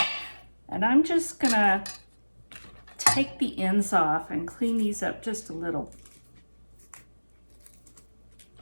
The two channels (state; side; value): inverted; both; correlation -1.00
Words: And I'm just gonna take the ends off and clean these up just a little.